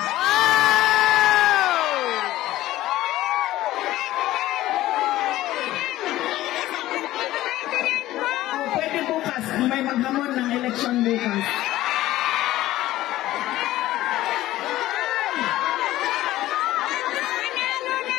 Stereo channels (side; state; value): right; quieter; 15.4 dB